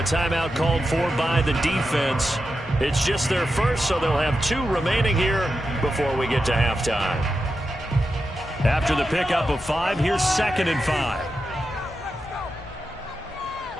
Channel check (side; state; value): both; normal; correlation 0.89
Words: timeout called for by the defense. It's just their first, so they'll have 2 remaining here before we get to halftime. After the pickup of 5, here's 2nd and 5.